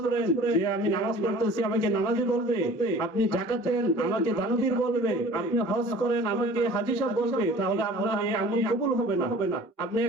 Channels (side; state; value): both; normal; correlation 0.46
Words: পড়েন যে আমি নামাজ পড়তেছি আমাকে নামাজি বলবে, আপনি যাকাত দেন আমাকে দানবীর বলবে, আপনি হজ করেন আমাকে হাজী সাহেব বলবে, তাহলে আপনার এই আমল কবুল হবে না। আপনি